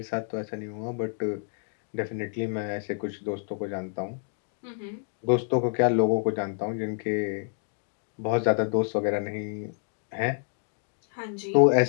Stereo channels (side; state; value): right; silent; 59 dB below the other